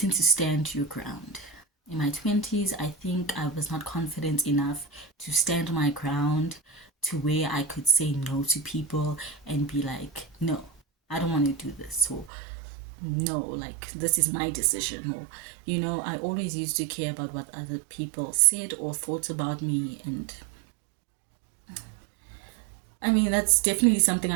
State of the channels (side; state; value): left; drops out; at 12.3 s